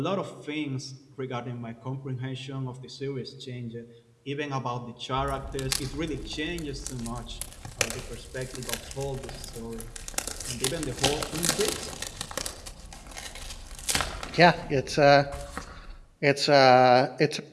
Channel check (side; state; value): both; identical; correlation 1.00